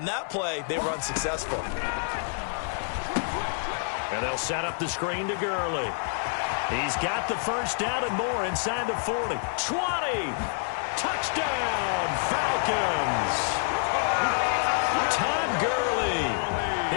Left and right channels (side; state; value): right; silent; 60 dB below the other